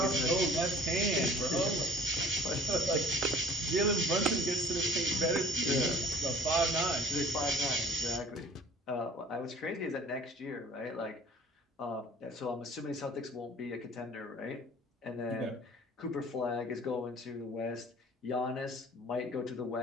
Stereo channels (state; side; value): normal; both; correlation 0.48